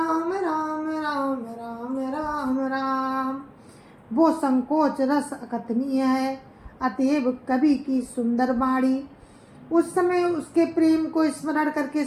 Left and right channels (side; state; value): both; identical; correlation 1.00